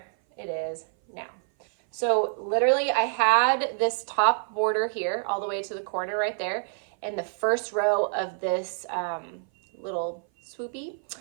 it is now. So literally I had this top border here all the way to the corner right there. And the first row of this little swoopy,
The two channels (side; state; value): left; silent; 57 dB below the other